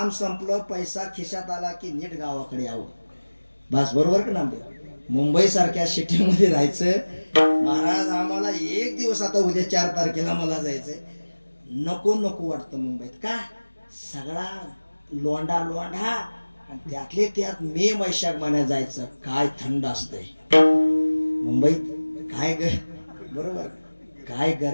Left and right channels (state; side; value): inverted; both; correlation -1.00